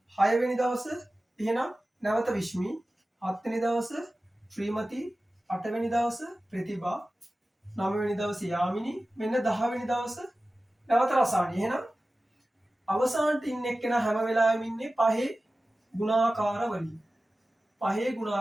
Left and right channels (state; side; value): normal; both; correlation 0.95